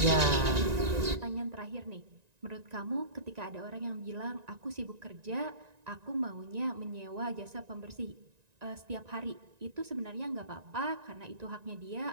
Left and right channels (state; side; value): late; left; 1.9 ms